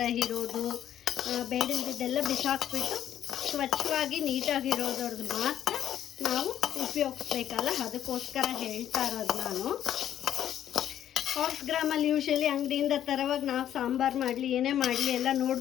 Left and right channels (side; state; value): right; quieter; 10.8 dB